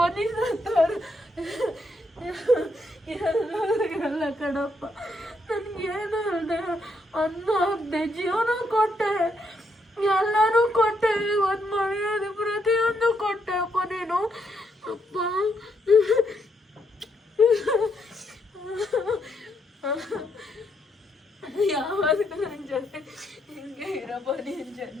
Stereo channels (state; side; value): normal; both; correlation 0.76